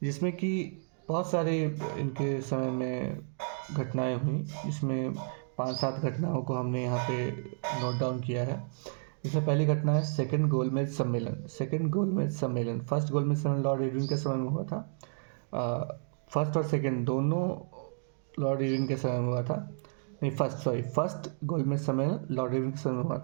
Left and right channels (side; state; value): left; silent; digital silence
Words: जिसमें कि बहुत सारे इनके समय में घटनाएं हुई, जिसमें 5-7 घटनाओं को हमने यहाँ पे नोट डाउन किया है। इसमें पहली घटना है सेकंड गोलमेज सम्मेलन। फर्स्ट गोलमेज सम्मेलन लॉर्ड इरविन के समय में हुआ था। फर्स्ट और सेकंड दोनों लॉर्ड इरविन के समय में हुआ था। नहीं, फर्स्ट गोलमेज सम्मेलन लॉर्ड इरविन के समय में हुआ